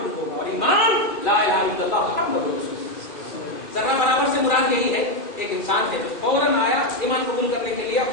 ہوگا، اور ایمان لا الہ الا اللہ محمد رسول اللہ۔ ذرہ برابر سے مراد یہی ہے، ایک انسان ہے جو فوراً آیا ایمان قبول کرنے کے لیے،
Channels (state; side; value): late; right; 2.4 ms